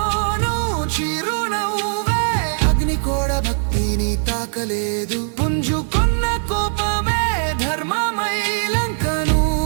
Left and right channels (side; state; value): left; silent; digital silence